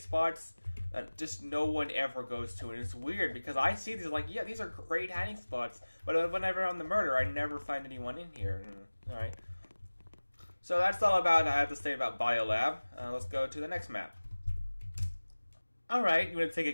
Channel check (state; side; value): inverted; both; correlation -1.00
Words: that just no one ever goes to, and it's weird, because I see these like, yeah, these are great hiding spots, but whenever I'm the murderer, I never find anyone in here. Alright. So that's all I have to say about Bolab. Let's go to the next map. Alright, you want to take